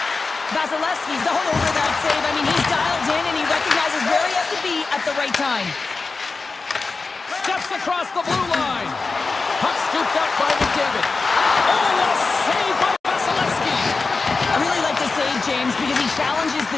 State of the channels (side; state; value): right; quieter; 4.1 dB